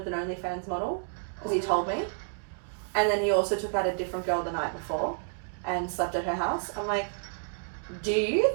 an OnlyFans model because he told me. And then he also took out a different girl the night before and slept at her house. I'm like, do you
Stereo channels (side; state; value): left; silent; 58 dB below the other